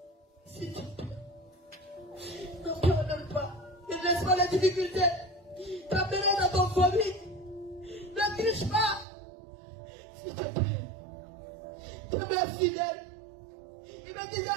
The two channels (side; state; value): left; drops out; at 9.1 s